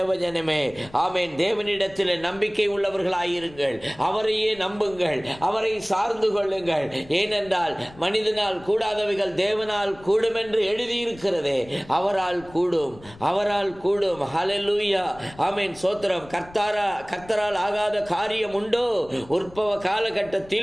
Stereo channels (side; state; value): left; noise; rumble, 21 dB below the sound